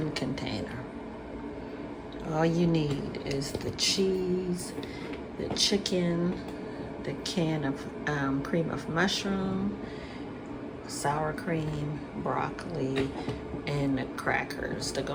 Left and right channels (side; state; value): both; identical; correlation 1.00